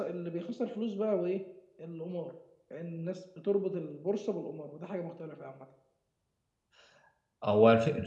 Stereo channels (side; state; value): both; identical; correlation 1.00